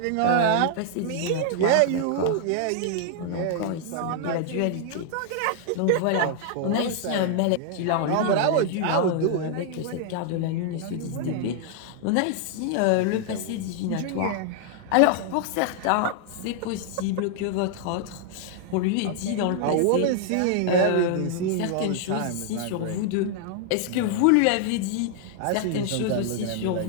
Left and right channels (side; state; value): both; different; correlation 0.00